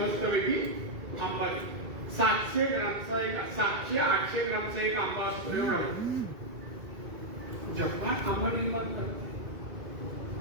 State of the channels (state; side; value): late; left; 2.3 ms